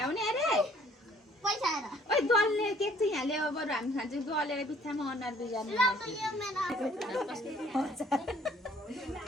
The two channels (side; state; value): both; normal; correlation 0.59